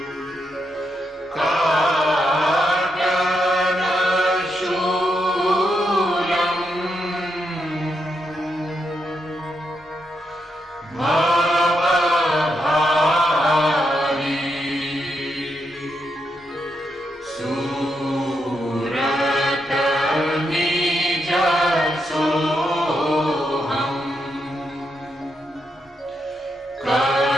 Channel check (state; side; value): normal; both; correlation 0.82